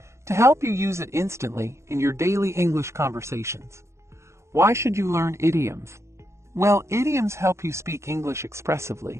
to help you use it instantly in your daily English conversations. Why should you learn idioms? Well, idioms help you speak English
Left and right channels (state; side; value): late; left; 0.14 ms